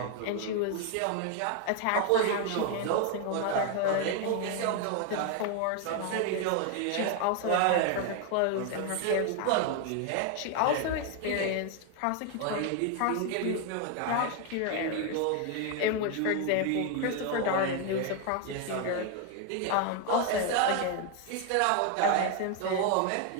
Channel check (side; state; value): both; different; correlation 0.01